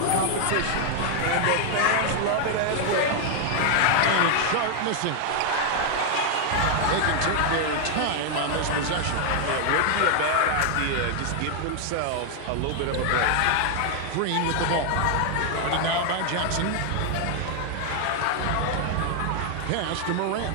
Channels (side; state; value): both; different; correlation 0.00